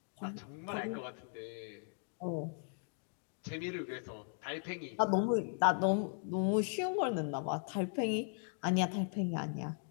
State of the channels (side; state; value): right; silent; 53 dB below the other